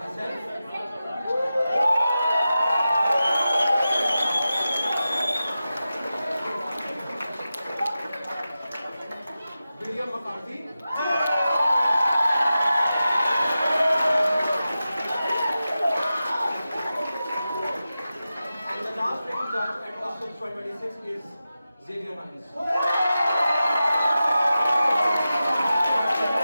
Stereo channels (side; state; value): both; inverted; correlation -0.93